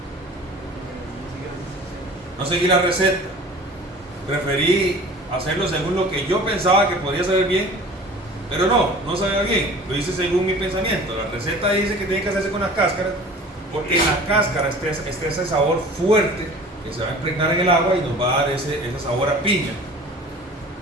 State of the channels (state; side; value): normal; both; correlation 0.43